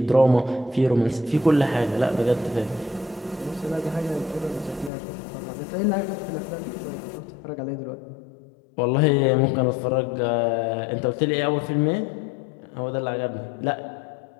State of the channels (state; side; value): drops out; right; at 4.9 s